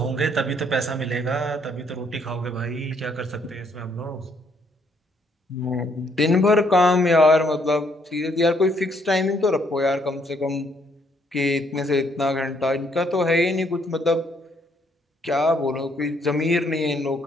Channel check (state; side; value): normal; both; correlation 0.69